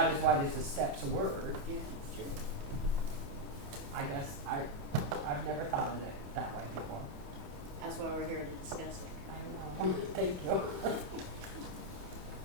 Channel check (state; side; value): late; left; 28 ms